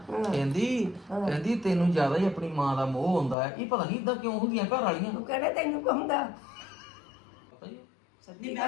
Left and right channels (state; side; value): drops out; right; at 3.4 s